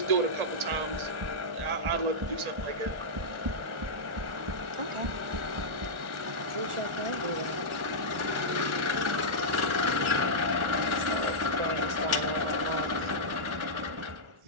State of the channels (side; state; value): left; late; 1.4 ms